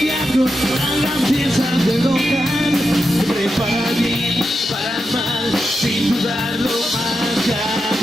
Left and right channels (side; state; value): both; normal; correlation 0.87